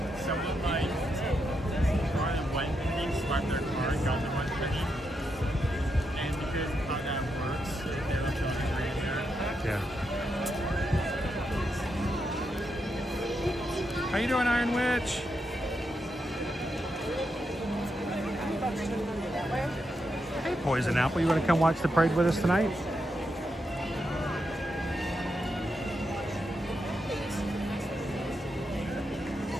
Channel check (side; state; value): both; normal; correlation 0.83